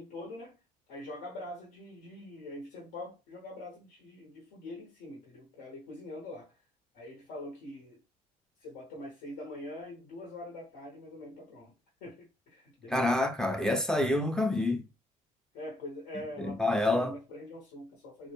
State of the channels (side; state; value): both; normal; correlation 0.74